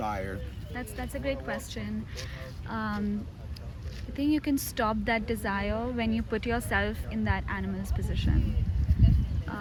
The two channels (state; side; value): identical; both; correlation 1.00